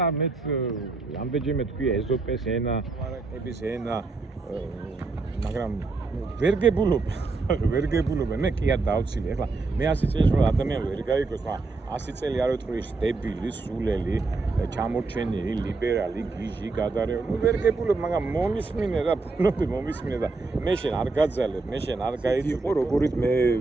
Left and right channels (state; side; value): quieter; left; 3.7 dB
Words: მეც ამდენჯერმე თქვია ეზოპეს ენა მარაკების ენა მაგრამ ვერ გებულობ მე კი არ დავცილე ეხლა მე 100 წელს რომ ადამიანი ვერ გაიგოს მაგრამ 100 წელი არ ვეთქვი დებილი სულელი ჩამორჩენილი ლიბერალი გიჟი გადარეული ნუ ვერ გებულობ მაგრამ მომისმინე რა ბუნები მომისმინე და მე შენ არ გაძალებ მე შენ არ გაიწიყო როგორიც მე